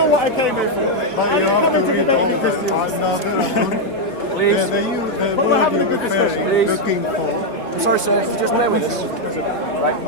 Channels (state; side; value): late; right; 4.0 ms